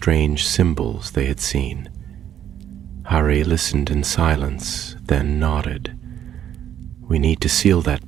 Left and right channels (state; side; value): quieter; left; 10.2 dB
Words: symbols they had seen. Harry listened in silence, then nodded. We need to seal that